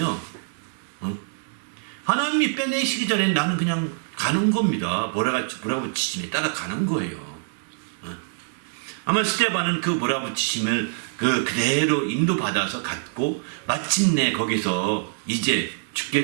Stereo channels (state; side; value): silent; left; digital silence